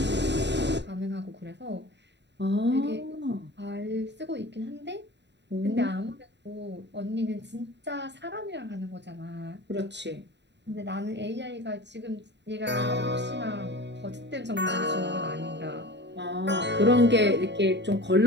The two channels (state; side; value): late; left; 0.51 ms